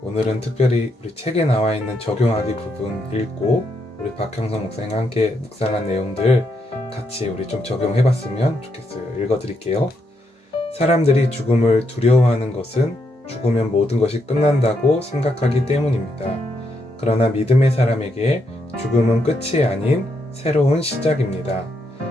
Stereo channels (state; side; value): normal; both; correlation 0.79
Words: 오늘은 특별히 우리 책에 나와 있는 적용하기 부분 읽고 우리 박형성 목사님과 함께 묵상한 내용들 같이 우리 좀 적용해봤으면 좋겠어요. 읽어드릴게요. 사람들이 죽음을 두려워하는 것은 죽으면 모든 것이 끝난다고 생각하기 때문입니다. 그러나 믿음의 사람에게 죽음은 끝이 아닌 새로운 시작입니다.